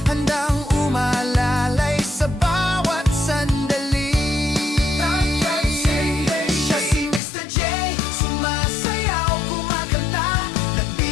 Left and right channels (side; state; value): right; drops out; at 7.2 s